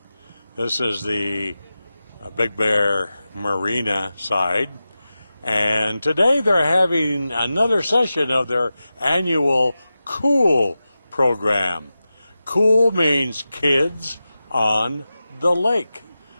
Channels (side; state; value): both; inverted; correlation -0.94